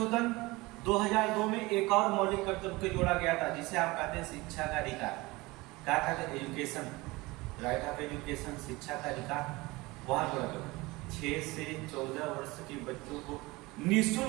2002 में एक और मौलिक कर्तव्य को जोड़ा गया था, जिसे आप कहते हैं शिक्षा का अधिकार। क्या कहते हैं? एजुकेशन, राइट ऑफ एजुकेशन, शिक्षा का अधिकार। वहां जोड़ा गया 6 से 14 वर्ष के बच्चों को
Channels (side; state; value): left; quieter; 22.2 dB